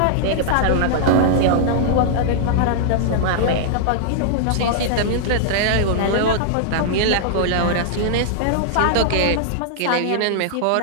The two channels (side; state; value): both; different; correlation -0.01